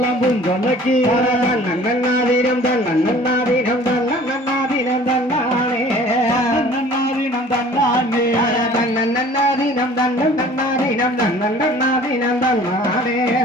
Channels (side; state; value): both; normal; correlation 0.49